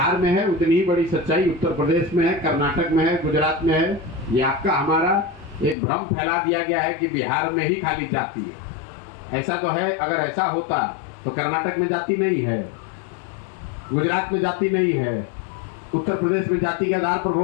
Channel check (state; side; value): drops out; right; at 5.8 s